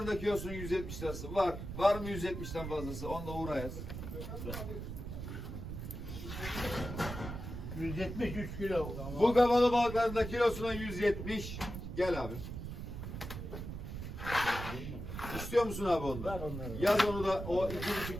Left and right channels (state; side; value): noise; right; rumble, 7 dB below the sound